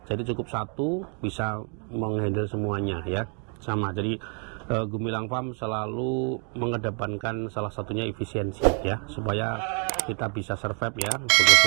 Jadi cukup satu bisa menghandle semuanya ya, sama. Jadi Gumilang Farm selalu mengedepankan salah satunya efisiensi ya, supaya kita bisa survive ya,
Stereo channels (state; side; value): quieter; left; 39.6 dB